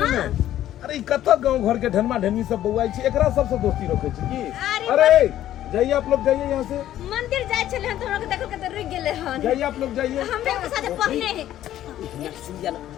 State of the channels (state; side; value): quieter; right; 12.5 dB